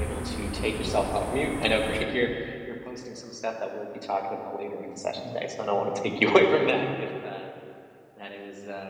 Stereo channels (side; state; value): both; identical; correlation 1.00